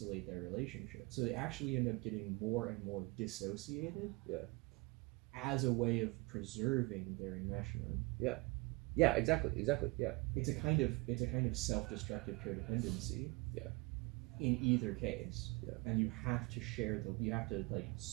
their relationship. So they actually end up getting more and more dissociated. Yeah. As a way of preserving their enmeshment. Yeah. Yeah, exactly. Yeah. It's a kind of self-destructive codependency. Yeah. In either case. Yeah. And you have to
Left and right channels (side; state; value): left; quieter; 26.3 dB